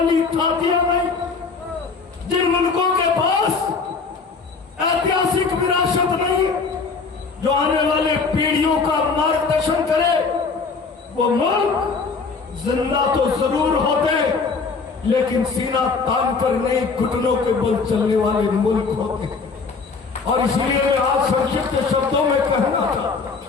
थातियां नहीं, जिन मुल्कों के पास ऐतिहासिक विरासत नहीं, जो आने वाले पीढ़ियों का मार्गदर्शन करे, वो मुल्क जिंदा तो जरूर होते, लेकिन सीना तान कर नहीं, घुटनों के बल चलने वाले मुल्क होते हैं। और इसलिए मैं आज संक्षिप्त शब्दों में कहना चाहता,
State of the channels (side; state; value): right; quieter; 4.7 dB